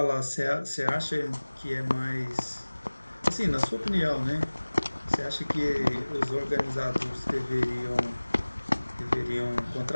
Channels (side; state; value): both; inverted; correlation -1.00